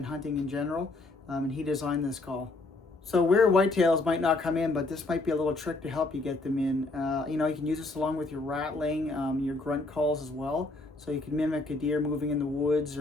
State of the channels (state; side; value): quieter; right; 3.1 dB